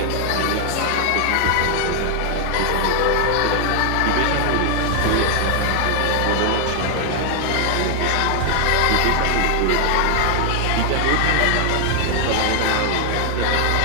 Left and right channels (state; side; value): different; both; correlation 0.00